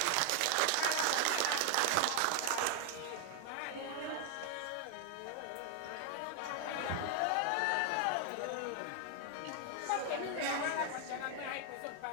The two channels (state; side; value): different; both; correlation 0.00